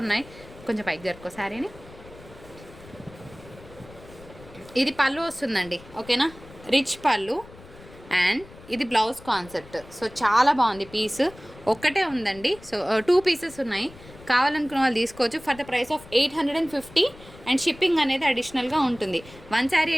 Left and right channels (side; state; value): left; noise; rumble, 20 dB below the sound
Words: ఉన్నాయి. కొంచెం పైకి జరుపుకో శారీని. ఇది పళ్ళు వస్తుందండి, ఓకేనా, రిచ్ పళ్ళు. అండ్ ఇది బ్లౌజ్ కాన్సెప్ట్. సో చాలా బాగుంది పీస్. ఒక్కటే ఉందండి, సో 2 పీసెస్ ఉన్నాయి. కావాలనుకున్న వాళ్ళు తీసుకోవచ్చు for the price of 850. And shipping అనేది అడిషనల్గా ఉంటుంది. 1 శారీ